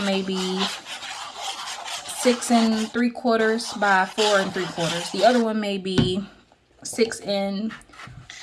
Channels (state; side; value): identical; both; correlation 1.00